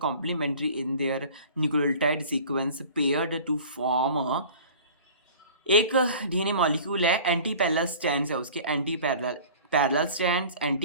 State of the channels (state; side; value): inverted; both; correlation -0.43